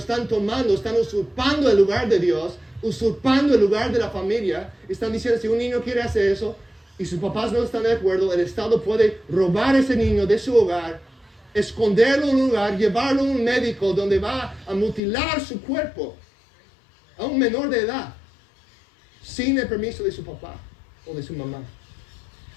usurpando el lugar de Dios, usurpando el lugar de la familia. Están diciendo, si un niño quiere hacer eso y sus papás no están de acuerdo, el Estado puede robar a ese niño de su hogar, esconderlo en un lugar, llevarlo a un médico donde va a mutilar su cuerpo, a un menor de edad sin el permiso de su papá o de su mamá.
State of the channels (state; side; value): drops out; right; at 15.0 s